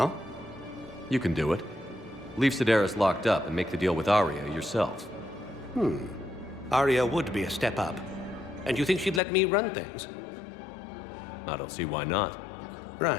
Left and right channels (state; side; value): drops out; right; at 9.2 s